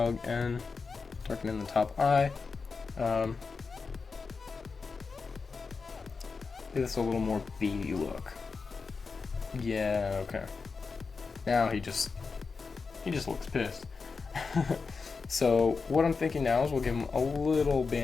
and darken in the top eye. Give this a little more beady look. Yeah, okay. Now he just looks pissed. So what I'm thinking now is we'll give him a little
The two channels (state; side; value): quieter; right; 4.7 dB